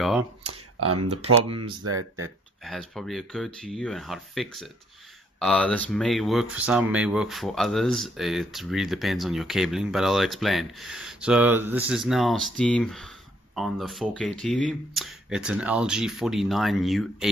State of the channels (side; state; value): both; normal; correlation 0.67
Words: The problems that has probably occurred to you and how to fix it. This may work for some, may work for others. It really depends on your cabling, but I'll explain. So this is now Steam on the 4K TV. It's an LG